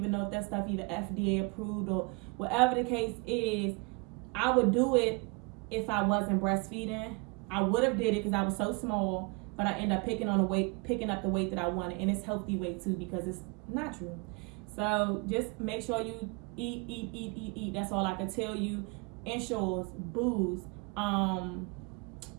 know if that stuff even FDA approved or whatever the case is. I would do it if I wasn't breastfeeding. I would have did it because I was so small, but I end up picking up the weight that I wanted, and it's healthy weight too because it's natural. So just make sure you eat. That's all I can tell you. Ensures, booze.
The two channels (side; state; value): left; quieter; 30.2 dB